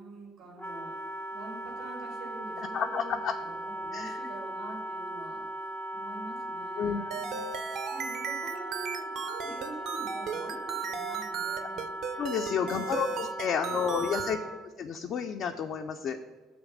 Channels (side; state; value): both; normal; correlation 0.58